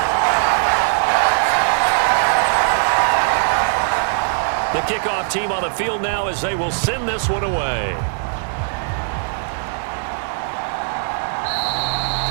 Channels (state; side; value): silent; left; digital silence